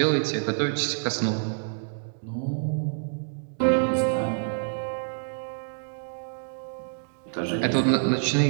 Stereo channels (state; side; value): silent; left; digital silence